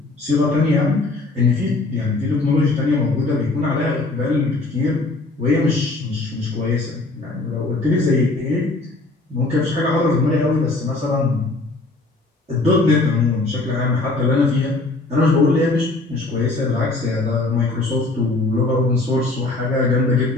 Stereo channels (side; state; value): right; quieter; 3.1 dB